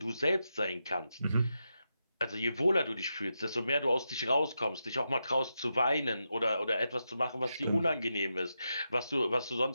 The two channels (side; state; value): both; inverted; correlation -0.87